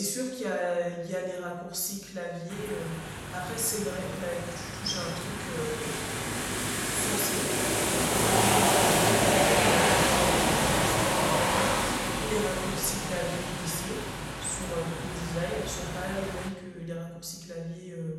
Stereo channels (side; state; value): both; identical; correlation 1.00